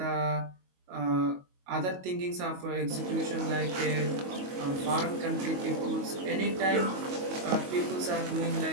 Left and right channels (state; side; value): late; left; 22 ms